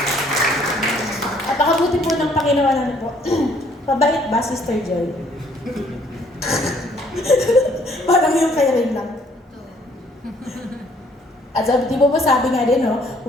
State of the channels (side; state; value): both; normal; correlation 0.63